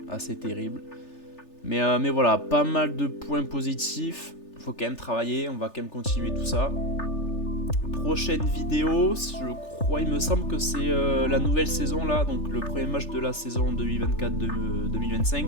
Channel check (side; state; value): right; late; 3.4 ms